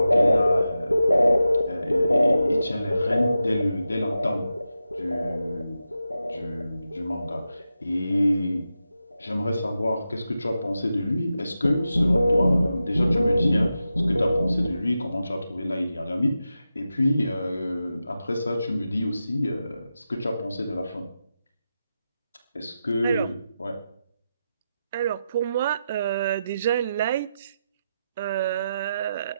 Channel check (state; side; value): inverted; both; correlation -0.90